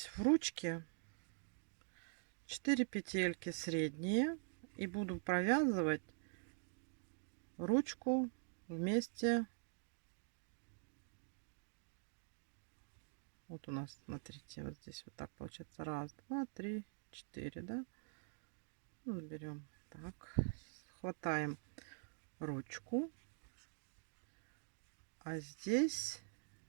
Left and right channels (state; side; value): silent; left; digital silence